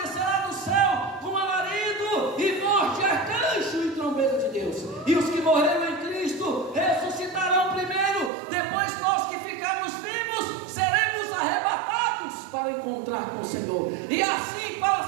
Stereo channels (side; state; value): left; drops out; at 8.3 s